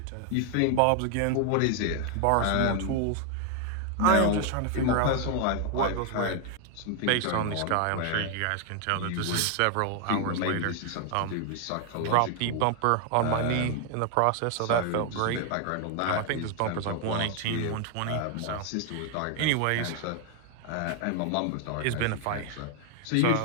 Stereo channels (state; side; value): different; both; correlation 0.00